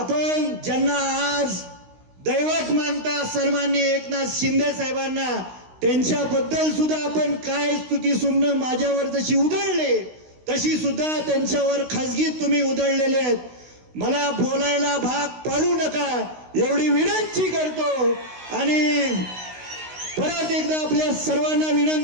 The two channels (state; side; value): late; left; 16 ms